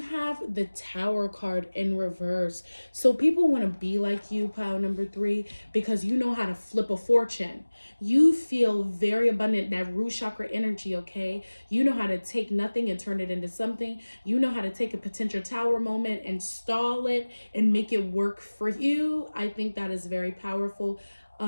have the Tower card in reverse. So people want to be like you, pile number 3, because you know how to flip a fortune. You feel very abundant, that root chakra energy, okay? You know how to take nothing and turn it into something. You know how to take a potential tower moment and stall it and make it work for you. I think that is very powerful.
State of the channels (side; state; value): both; inverted; correlation -1.00